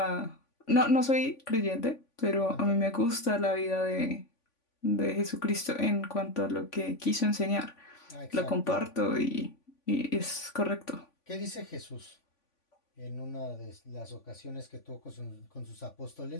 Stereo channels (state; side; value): late; right; 3.5 ms